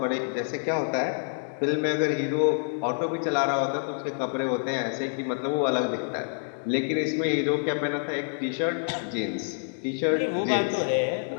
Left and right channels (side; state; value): right; silent; digital silence